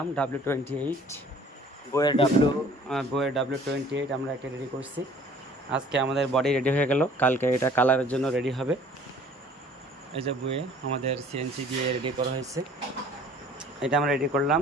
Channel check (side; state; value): both; normal; correlation 0.52